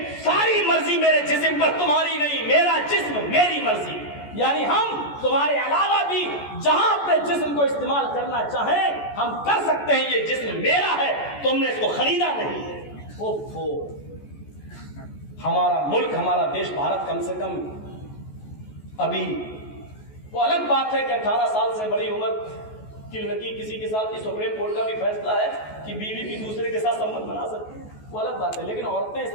सारी मर्जी मेरे जिस्म पर तुम्हारी नहीं, मेरा जिस्म मेरी मर्जी। यानी हम तुम्हारे अलावा भी जहां अपने जिस्म को इस्तेमाल करना चाहें हम कर सकते हैं। ये जिस्म मेरा है, तुमने इसको खरीदा नहीं है। ओफो, हमारा मुल्क, हमारा देश भारत कम से कम अभी, वो अलग बात है कि 18 साल से बड़ी उम्र की लड़की किसी के साथ, सुप्रीम कोर्ट का भी फैसला है कि बीवी भी दूसरे के साथ संबंध बना सकती है, वो अलग बात है। लेकिन औरतें इस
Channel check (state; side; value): late; right; 14 ms